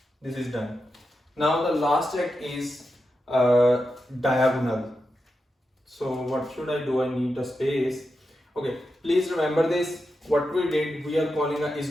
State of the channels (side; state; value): both; normal; correlation 0.88